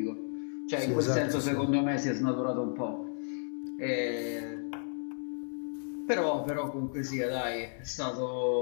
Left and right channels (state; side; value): silent; right; digital silence